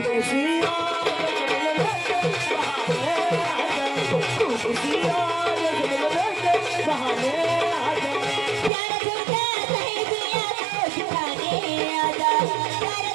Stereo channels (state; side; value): drops out; left; at 8.7 s